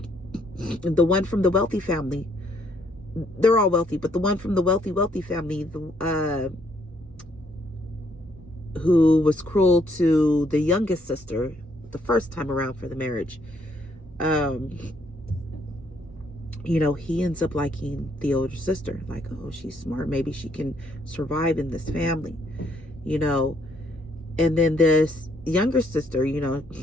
one from the wealthy family, they're all wealthy, but the one from the wealthy family, who was cruel to the youngest sister the first time around for the marriage, you know, he ends up liking the older sister. Like, oh, she's smart. Maybe she can survive in this family, you know. And then this younger sister, you know,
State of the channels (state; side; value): normal; both; correlation 0.69